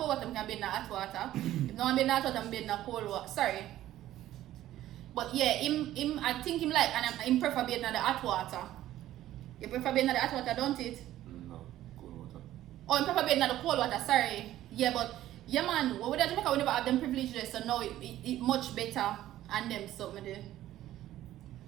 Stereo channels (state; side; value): quieter; left; 13.7 dB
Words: water, I can be in the hot water. If I don't want to be in the hot water, I can be in the cold water. Sorry. But yeah, him I think him like, and him prefer being in the hot water. You prefer being in the hot water, don't it? No, cold water. Oh, you prefer being in the cold water, sorry. Yeah, but yeah man, what we do Jamaica, we never have them privileges, so now it much better and them something there.